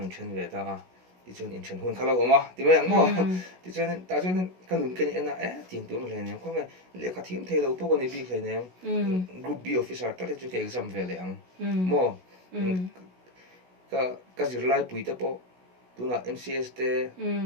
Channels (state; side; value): late; left; 16 ms